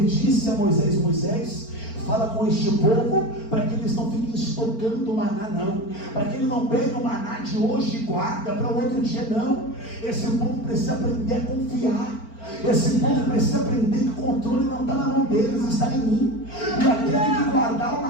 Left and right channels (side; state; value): right; late; 4.4 ms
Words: disse a Moisés: Moisés, fala com este povo para que eles não fiquem estocando o maná, não, para que ele não pegue o maná de hoje e guarda para o outro dia, não. Esse povo precisa aprender a confiar. Esse povo precisa aprender que o controle não está na mão deles, está em mim. E aquele que guardar o